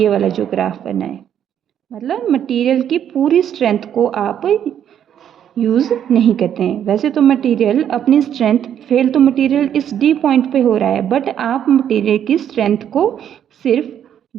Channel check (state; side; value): quieter; left; 9.6 dB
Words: वाला जो ग्राफ बना है मतलब मटेरियल की पूरी स्ट्रेंथ को आप यूज़ नहीं करते हैं. वैसे तो मटेरियल अपनी स्ट्रेंथ फेल तो मटेरियल इस डी पॉइंट पे हो रहा है बट आप मटेरियल की स्ट्रेंथ को सिर्फ